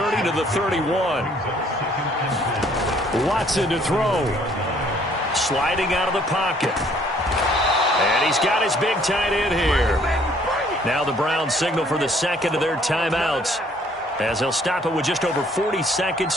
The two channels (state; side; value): normal; both; correlation 0.61